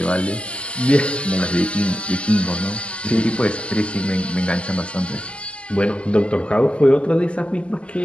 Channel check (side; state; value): right; late; 0.060 ms